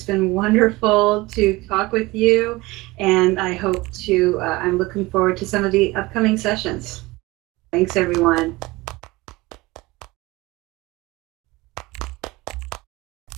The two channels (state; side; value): quieter; left; 21.2 dB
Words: been wonderful to talk with you, and I'm looking forward to some of the upcoming sessions. Thanks, everyone.